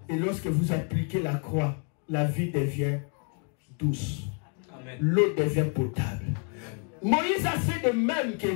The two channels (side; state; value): right; quieter; 39.4 dB